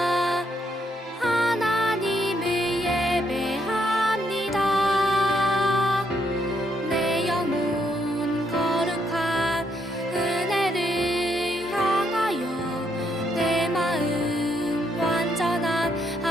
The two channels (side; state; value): both; normal; correlation 0.75